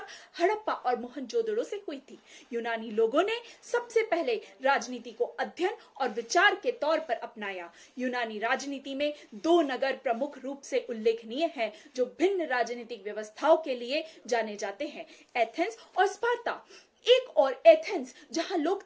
हड़प्पा और मोहनजोदड़ो से हुई थी। यूनानी लोगों ने सबसे पहले राजनीति को अध्ययन और विचार के तौर पर अपनाया। यूनानी राजनीति में दो नगर प्रमुख रूप से उल्लेखनीय हैं जो भिन्न राजनीतिक व्यवस्थाओं के लिए जाने जाते हैं, एथेंस और स्पार्ता। एक और एथेंस जहां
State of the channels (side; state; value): both; identical; correlation 1.00